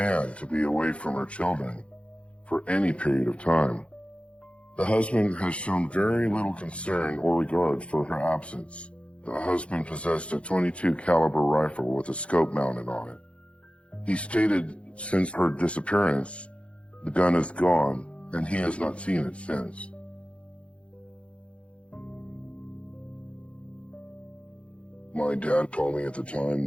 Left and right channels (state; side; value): late; right; 0.061 ms